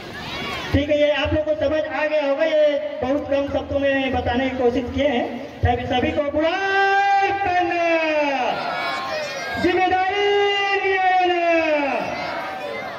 ठीक है, ये आप लोगों को समझ आ गया होगा। ये बहुत कम शब्दों में बताने की कोशिश किए हैं। सभी को बुलाई करना, जिम्मेदारी लेना,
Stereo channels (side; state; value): both; identical; correlation 1.00